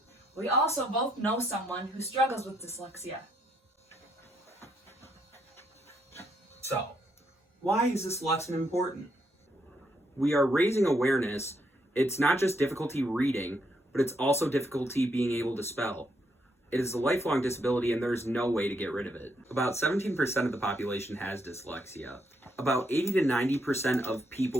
We also both know someone who struggles with dyslexia. So, why is this lesson important? We are raising awareness. It's not just difficulty reading, but it's also difficulty being able to spell. It is a lifelong disability and there's no way to get rid of it. About 17% of the population has dyslexia. About 80 to 90% of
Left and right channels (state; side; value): normal; both; correlation 0.75